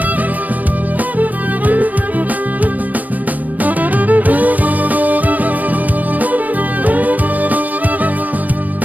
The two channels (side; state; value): left; late; 0.079 ms